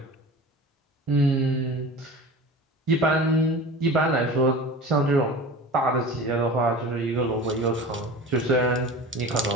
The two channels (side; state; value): both; normal; correlation 0.35